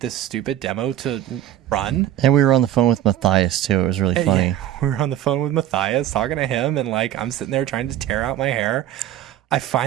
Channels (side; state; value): left; quieter; 12.0 dB